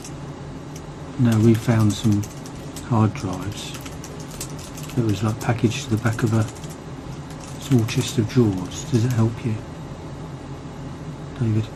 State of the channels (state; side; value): identical; both; correlation 1.00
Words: Now we found some hard drives that was like packaged to the back of a small chest of drawers. Does it help you, David?